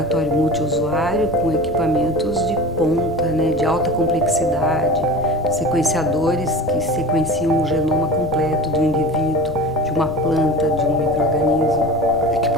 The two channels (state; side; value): noise; left; rumble, 14 dB below the sound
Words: multiusuário com equipamentos de ponta, né, de alta complexidade, sequenciadores que sequenciam o genoma completo do indivíduo, de uma planta, de um micro-organismo.